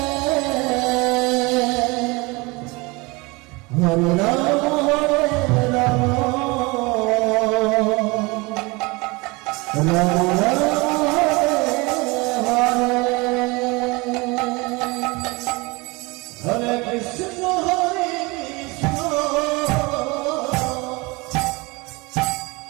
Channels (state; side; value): quieter; left; 25.4 dB